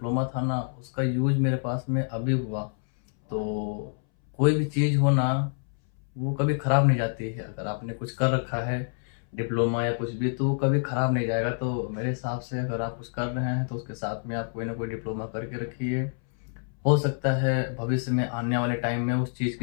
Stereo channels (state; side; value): silent; right; 60 dB below the other